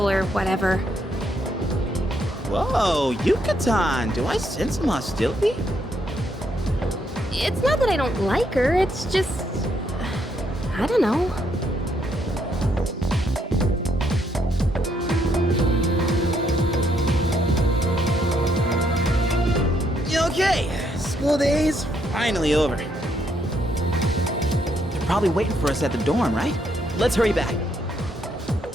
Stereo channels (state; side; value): normal; both; correlation 0.74